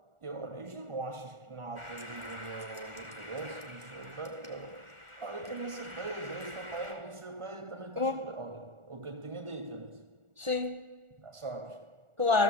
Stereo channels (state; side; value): late; left; 1.4 ms